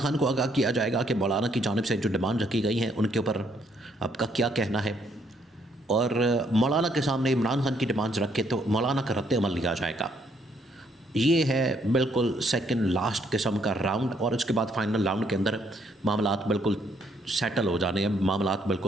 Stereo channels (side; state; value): both; normal; correlation 0.70